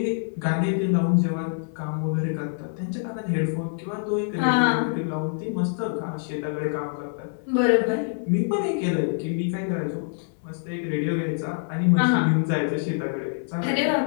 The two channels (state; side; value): silent; right; 61 dB below the other